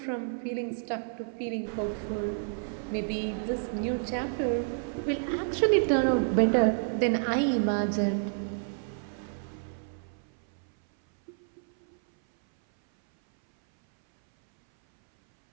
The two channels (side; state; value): left; silent; 58 dB below the other